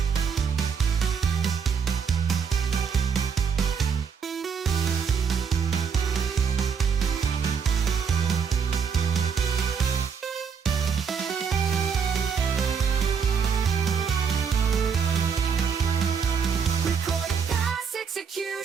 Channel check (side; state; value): left; quieter; 6.5 dB